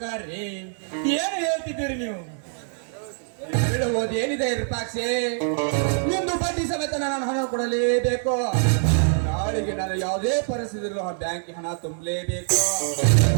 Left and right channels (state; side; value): silent; left; 62 dB below the other